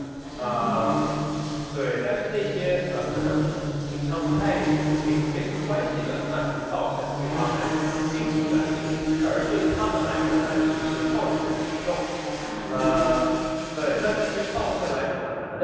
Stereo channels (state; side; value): identical; both; correlation 1.00